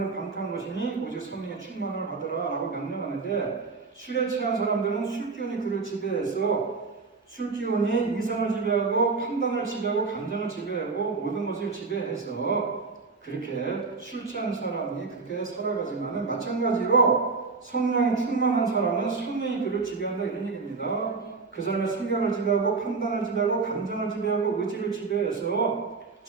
방탕한 것이니 오직 성령의 충만을 받으라 라고 명령하는데 술에 취한 사람들은 술기운이 그를 지배해서 술기운이 이성을 지배하고 판단을 지배하고 감정을 지배하고 모든 것을 지배해서 그렇게 술 취한 사람이 그렇게 살아가지만 마찬가지로 성령이 충만한 사람은 성령이 그를 지배한다 이런 얘기입니다. 그 사람의 생각을 지배하고 판단을 지배하고 감정을 지배하고 의지를 지배해서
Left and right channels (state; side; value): quieter; left; 4.4 dB